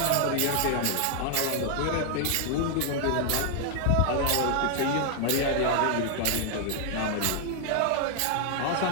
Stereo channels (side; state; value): both; different; correlation 0.00